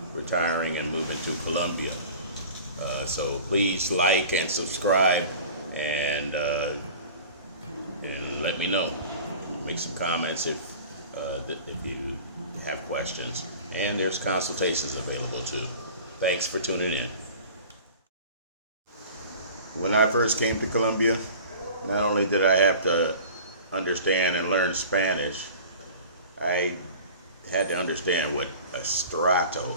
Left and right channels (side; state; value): both; inverted; correlation -0.40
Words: retiring and moving to Colombia. So please like and subscribe and let me know. Make some comments if you have questions. And there's consultations available too. Thanks for tuning in. When I first came to Colombia, not only did I have to understand and learn Spanish, I had to understand what Estrato